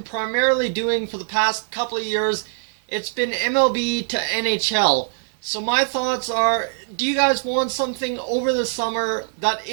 primarily doing for the past couple of years. It's been MLB to NHL. So my thoughts are, do you guys want something over the summer that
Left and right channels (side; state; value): left; silent; 64 dB below the other